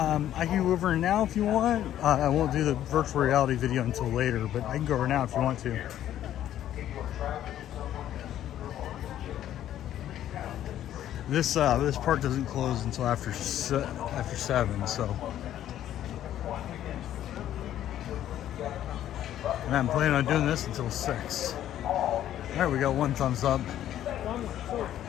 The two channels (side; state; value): right; quieter; 11.8 dB